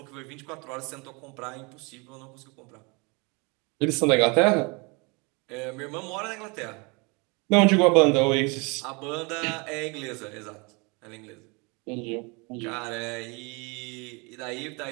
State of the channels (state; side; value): quieter; left; 29.6 dB